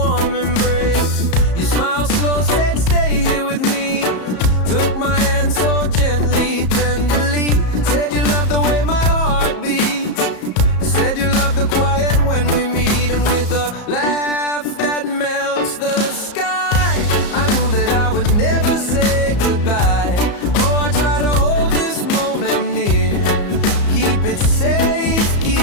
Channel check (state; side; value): late; right; 34 ms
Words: embrace. You smile slow, said stay here with me. Took my hand so gently, tenderly. Said you love the way my heart beats. Said you love the quiet when we meet. And with a laugh that melts the sky, I knew that I would never say goodbye. Oh, I try to hold this moment near, keep it safe,